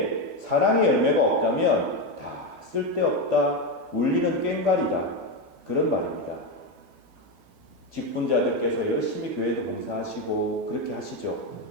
사랑의 열매가 없다면 다 쓸데없다, 울리는 꽹과리다, 그런 말입니다. 직분자들께서 열심히 교회도 봉사하시고 그렇게 하시죠.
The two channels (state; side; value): late; left; 12 ms